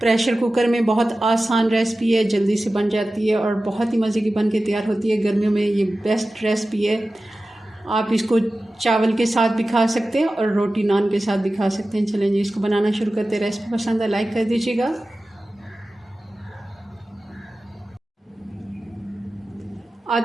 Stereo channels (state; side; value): normal; both; correlation 0.95